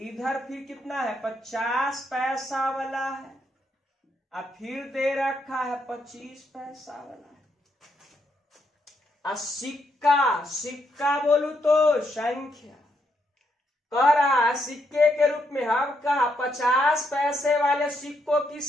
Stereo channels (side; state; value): both; normal; correlation 0.78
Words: फिर कितना है 50 पैसा वाला है, और फिर दे रखा है 25 पैसा वाला है। सिक्का, सिक्का बोलू तो संख्या, कह रहा है सिक्के के रूप में हम कहा 50 पैसे वाले सिक्कों की